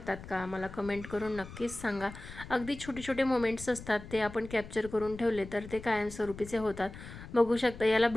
का, मला कमेंट करून नक्कीच सांगा. अगदी छोटे छोटे मोमेंट्स असतात, ते आपण कॅप्चर करून ठेवले तर ते कायमस्वरूपीचे होतात. बघू शकता याला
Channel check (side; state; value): left; noise; rumble, 14 dB below the sound